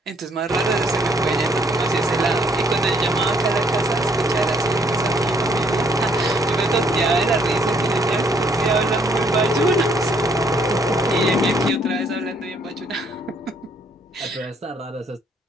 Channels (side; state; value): both; normal; correlation 0.66